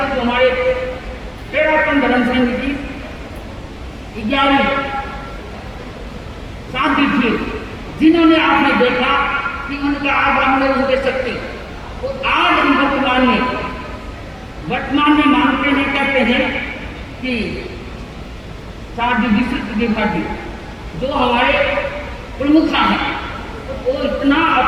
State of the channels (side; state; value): both; identical; correlation 1.00